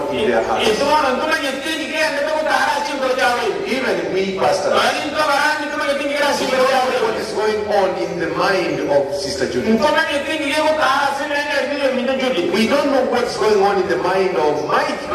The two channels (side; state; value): both; identical; correlation 1.00